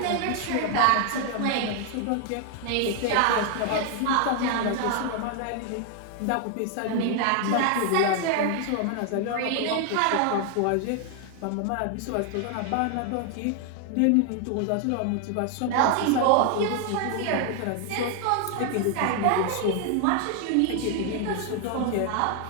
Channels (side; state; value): both; different; correlation 0.00